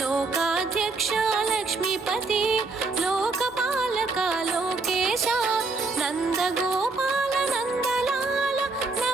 లక్ష్మీపతి లోకపాలక లోకేశ నందగోపాల నందలాల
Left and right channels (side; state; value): left; quieter; 3.8 dB